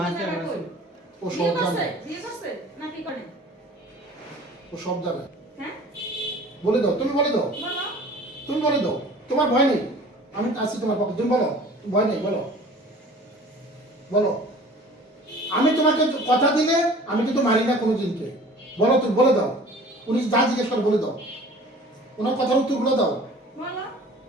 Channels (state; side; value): normal; both; correlation 0.46